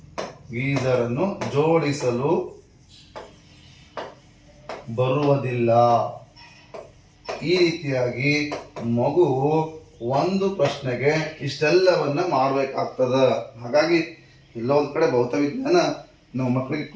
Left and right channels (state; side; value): identical; both; correlation 1.00